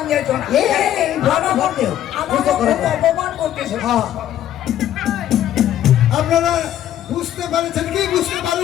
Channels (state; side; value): quieter; right; 11.6 dB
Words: যেত না এই বাবা করতে আমাকে খুব অপমান করতেছে হ্যাঁ আপনারা বুঝতে পারছেন কি বুঝতে